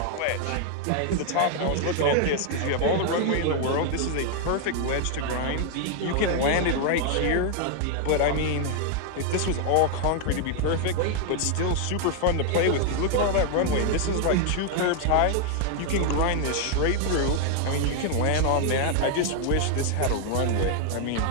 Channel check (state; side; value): different; both; correlation 0.00